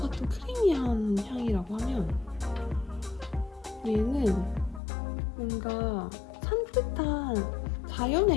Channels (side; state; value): right; drops out; at 4.8 s